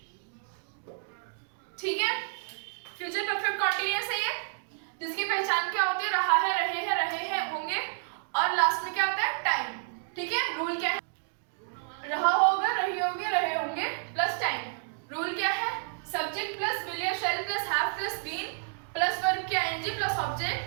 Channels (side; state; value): left; silent; digital silence